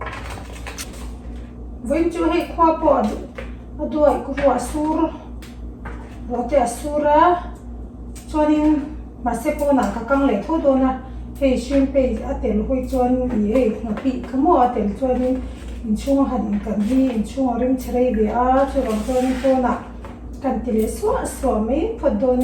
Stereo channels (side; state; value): both; identical; correlation 1.00